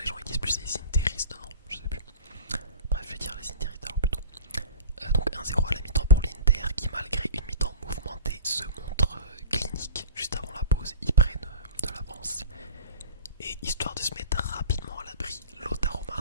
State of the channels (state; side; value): inverted; both; correlation -0.39